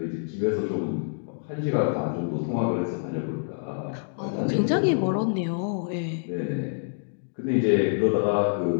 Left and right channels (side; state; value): right; silent; digital silence